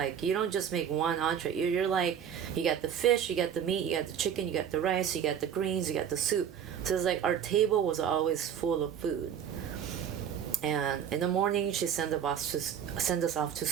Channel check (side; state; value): left; quieter; 8.6 dB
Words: you don't just make one entree. You're like, you got the fish, you got the meat, you got the chicken, you got the rice, you got the greens, you got the soup. So it's like our table was always full of food. And in the morning, she send us off to